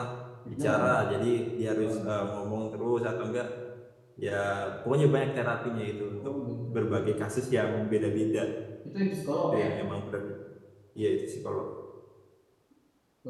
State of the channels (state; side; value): identical; both; correlation 1.00